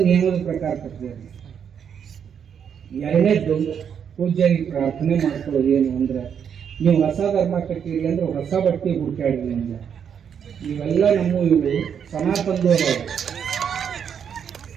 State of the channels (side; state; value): left; quieter; 7.8 dB